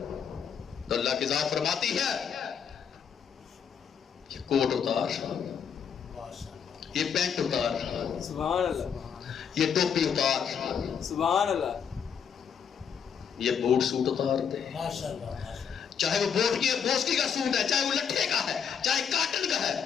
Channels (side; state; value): right; quieter; 7.4 dB